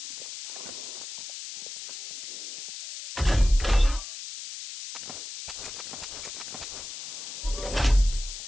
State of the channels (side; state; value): left; noise; hiss, 9 dB below the sound